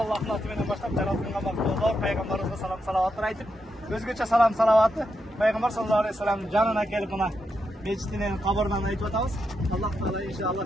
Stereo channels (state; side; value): normal; both; correlation 0.84